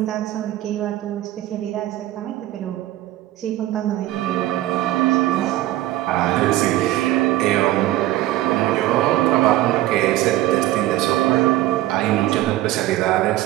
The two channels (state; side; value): quieter; left; 15.4 dB